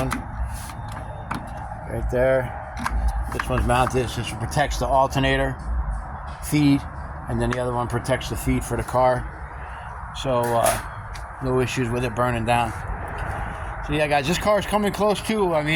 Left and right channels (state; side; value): identical; both; correlation 1.00